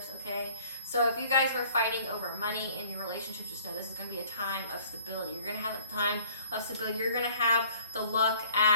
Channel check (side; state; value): both; inverted; correlation -0.54